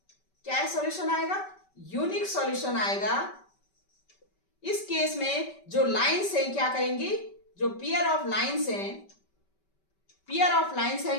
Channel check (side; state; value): right; late; 5.2 ms